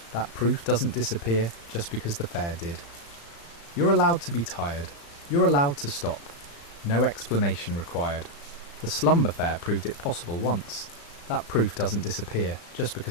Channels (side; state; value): right; late; 35 ms